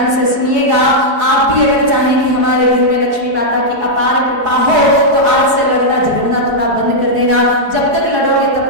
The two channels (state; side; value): late; left; 4.7 ms